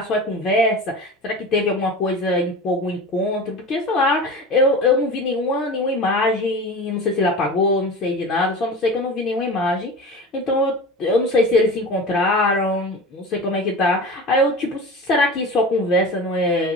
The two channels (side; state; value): both; normal; correlation 0.32